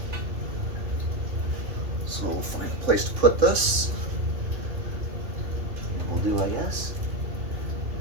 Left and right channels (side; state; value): left; late; 3.6 ms